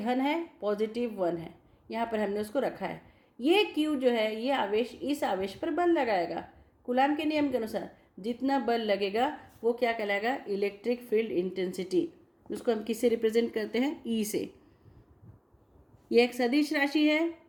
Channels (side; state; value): both; identical; correlation 1.00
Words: है, पॉजिटिव 1 है, यहाँ पर हमने उसको रखा है। ये Q जो है, ये आवेश इस आवेश पर बल लगाएगा। कूलाम के नियम के अनुसार जितना बल लगेगा वो क्या कहलाएगा? Electric field intensity. उसको हम किससे रिप्रेजेंट करते हैं? E से। ये एक सदिश राशि है,